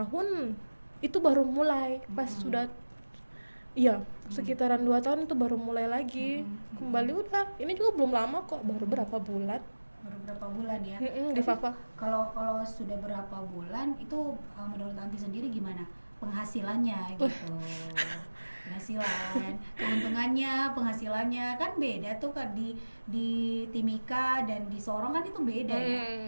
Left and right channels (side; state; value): both; inverted; correlation -1.00